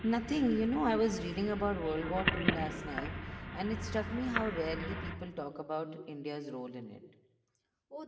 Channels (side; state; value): both; identical; correlation 1.00